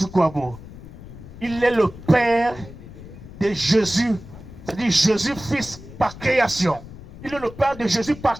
Il est le père de Jésus. C'est-à-dire Jésus fils par création. Il est le père de Jésus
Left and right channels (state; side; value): noise; left; rumble, 15 dB below the sound